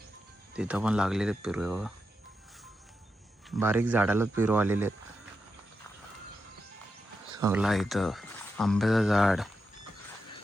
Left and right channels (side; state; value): both; normal; correlation 0.87